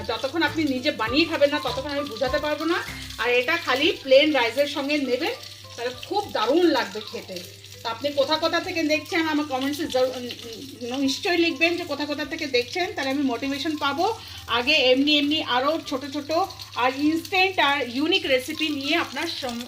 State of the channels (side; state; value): both; identical; correlation 1.00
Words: যতক্ষণ আপনি নিজে বানিয়ে খাবেন না ততক্ষণ আমি বোঝাতে পারবো না। আর এটা খালি প্লেন রাইসের সঙ্গে নেবেন, তাহলে খুব দারুণ লাগবে খেতে। তো আপনি কোথা থেকে দেখছেন আমার কমেন্টসে নিশ্চয়ই লিখবেন যে কোথা থেকে দেখছেন, তাহলে আমি মোটিভেশন পাবো আগে এমনি আরও ছোট ছোট আর ইনস্ট্যান্ট আর ইউনিক রেসিপি নিয়ে আপনার